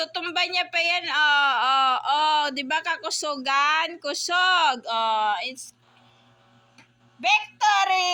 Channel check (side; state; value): both; identical; correlation 1.00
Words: niya pa yan, diba kakusugan? Kusog, it's